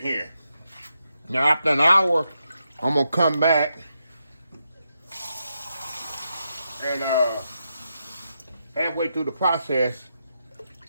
Now, after an hour, I'm going to come back and halfway through the process,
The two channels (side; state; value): both; inverted; correlation -0.84